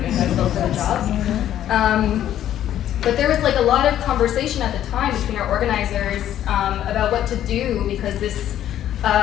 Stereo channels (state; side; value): quieter; right; 11.5 dB